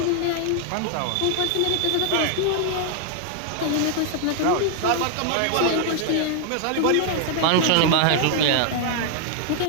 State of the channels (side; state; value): both; different; correlation 0.00